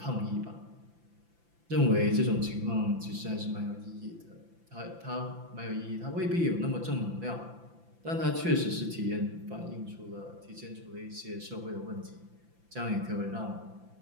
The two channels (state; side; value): late; left; 5.9 ms